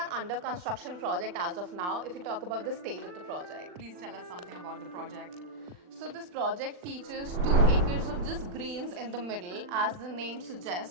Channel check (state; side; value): late; left; 40 ms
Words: under construction project as of now if you talk about the stage of the project. Please tell us something about the project. So this project features 2 acres of just greens in the middle, as the name